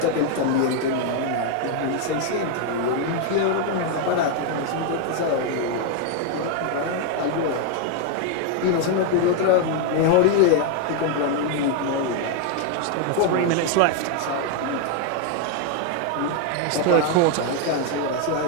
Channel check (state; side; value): different; both; correlation 0.01